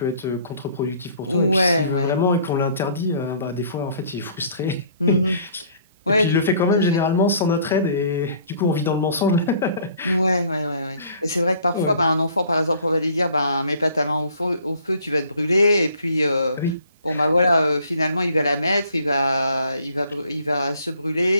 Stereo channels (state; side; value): inverted; both; correlation -0.56